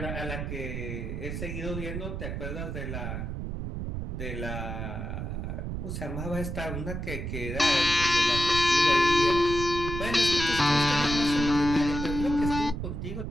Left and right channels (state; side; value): noise; right; rumble, 5 dB below the sound